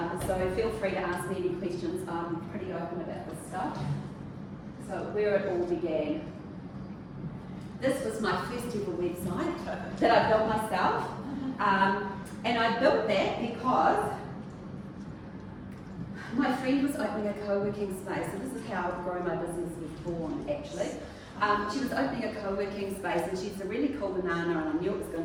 So feel free to ask me any questions. I'm pretty open about this stuff. So where it all began. This was my first ever website that I built myself. And I built that because my friend was opening a co-working space. So this is how Grow My Business was born, actually. She was opening a co-working space, and she's a really cool banana, and I knew it was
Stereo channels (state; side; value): identical; both; correlation 1.00